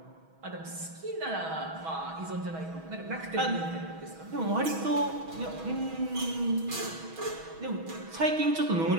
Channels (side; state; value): left; late; 6.2 ms